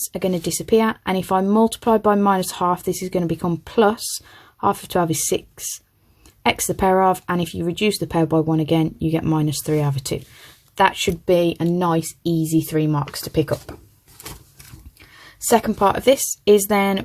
are going to disappear. And if I multiply by minus half, this is going to become plus. Half of 12 is 6. X to the power of, and if you reduce the power by 1 again, you get minus 3 over 2. That should be a nice, easy 3 marks to pick up. Second part of this is then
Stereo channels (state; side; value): identical; both; correlation 1.00